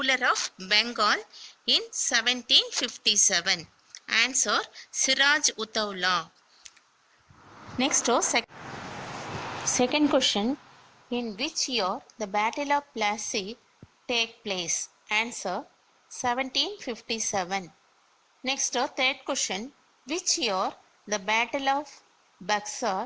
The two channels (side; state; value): both; identical; correlation 1.00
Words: of Bengal in 1757? Answer, Siraj Uttaula. Next, second question, in which year the Battle of Plassey take place? Answer, 1757. Next, third question, which year the Battle of